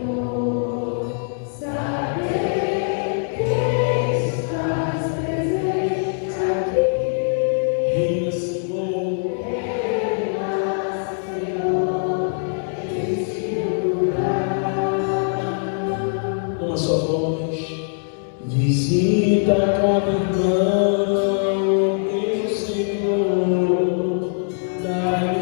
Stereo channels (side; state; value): right; silent; 64 dB below the other